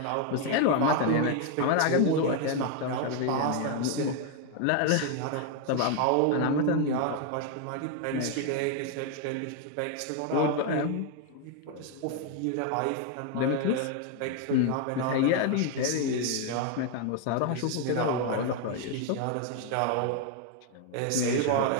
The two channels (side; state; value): both; different; correlation 0.01